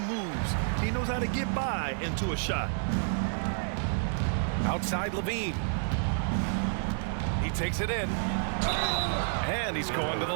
moves. He knows how to get by into a shot. Outside Levine. He takes it in. And he's going to the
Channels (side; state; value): left; silent; 58 dB below the other